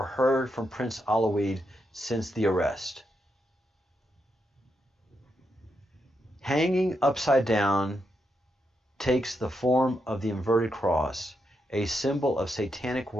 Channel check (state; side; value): normal; both; correlation 0.83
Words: heard from Prince Aloid since the arrest. Hanging upside down takes the form of the inverted cross, a symbol of satanic